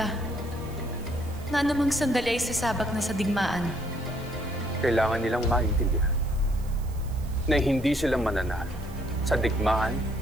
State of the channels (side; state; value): right; noise; hiss, 22 dB below the sound